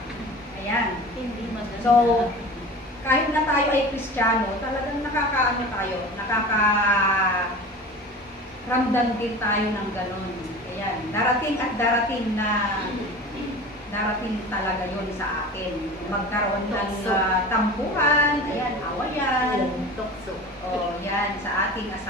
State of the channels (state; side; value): normal; both; correlation 0.36